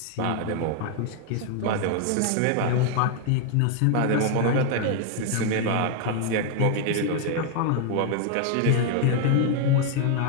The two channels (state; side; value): different; both; correlation 0.00